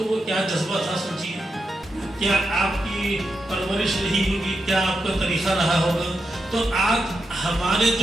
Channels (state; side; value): normal; both; correlation 0.86